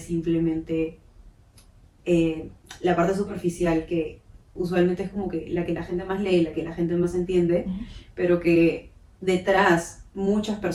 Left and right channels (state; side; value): identical; both; correlation 1.00